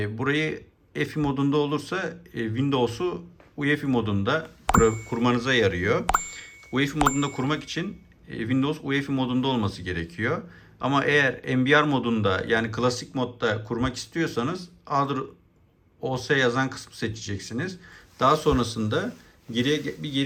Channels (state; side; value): identical; both; correlation 1.00